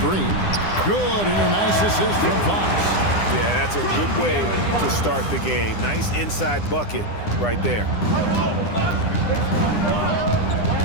Good, and a nice assist from Fox. Yeah, that's a good way to start the game. Nice inside bucket right there.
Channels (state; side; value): late; right; 9.9 ms